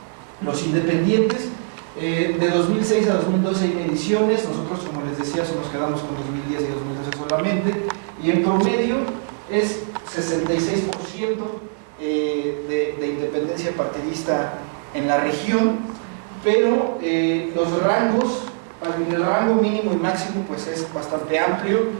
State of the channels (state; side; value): silent; left; digital silence